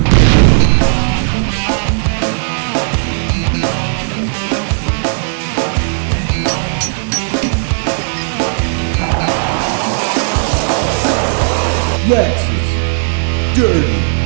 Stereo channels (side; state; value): left; silent; digital silence